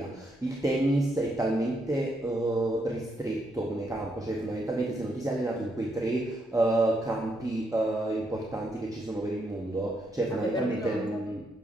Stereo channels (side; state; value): both; normal; correlation 0.78